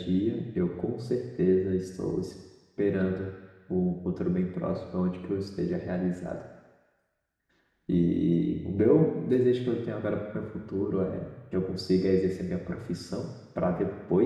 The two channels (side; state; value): both; identical; correlation 1.00